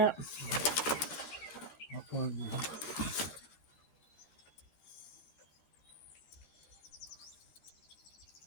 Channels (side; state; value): right; late; 13 ms